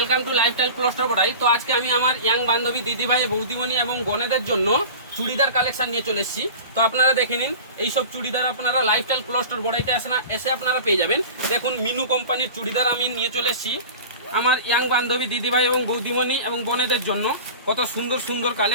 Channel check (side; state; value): both; inverted; correlation -0.36